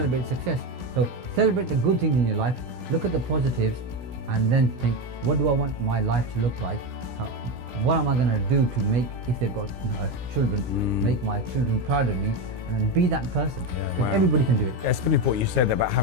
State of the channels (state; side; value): late; left; 17 ms